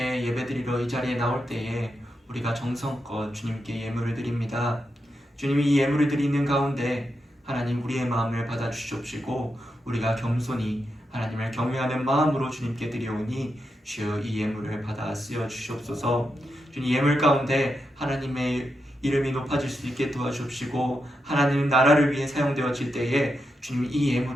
예배드리러 이 자리에 나올 때에 우리가 정성껏 주님께 예물을 드립니다. 주님이 이 예물을 드리는 가운데 하나님 우리의 마음을 받아주시옵시고 우리가 겸손히 하나님을 경외하는 마음으로 주님께 드려오니 주여 이 예물을 받아 쓰여 주시옵소서. 주님 예물 가운데 하나님의 이름이 높아질 수 있게 도와주옵시고 하나님 나라를 위해 사용되어질 때에 주님 이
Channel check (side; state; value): both; normal; correlation 0.86